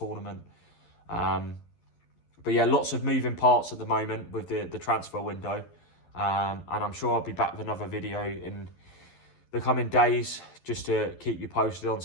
But yeah, lots of moving parts at the moment with the transfer window, and I'm sure I'll be back with another video in the coming days just to keep you posted on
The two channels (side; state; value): right; late; 11 ms